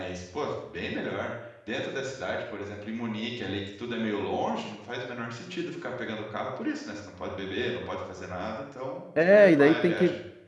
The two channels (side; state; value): both; identical; correlation 1.00